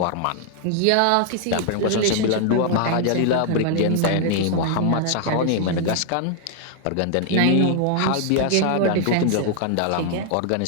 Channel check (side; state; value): both; different; correlation 0.00